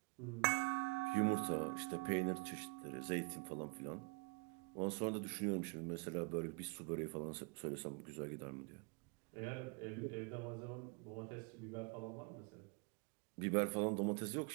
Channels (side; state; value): left; quieter; 29.3 dB